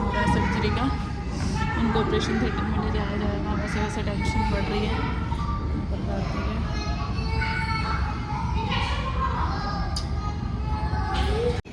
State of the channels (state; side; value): identical; both; correlation 1.00